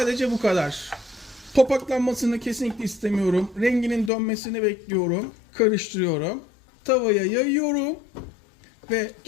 bu kadar. Topaklanmasını kesinlikle istemiyorum. Renginin dönmesini bekliyorum. Karıştırıyorum. Tavaya yayıyorum. Ve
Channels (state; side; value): drops out; right; at 4.1 s